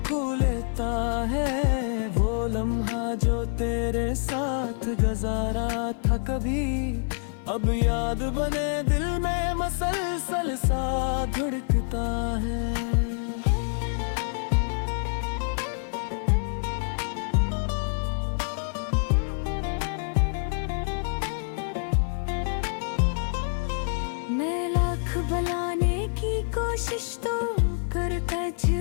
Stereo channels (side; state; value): right; silent; 55 dB below the other